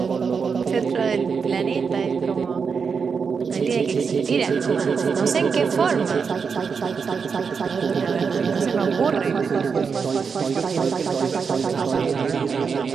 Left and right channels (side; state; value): left; quieter; 5.8 dB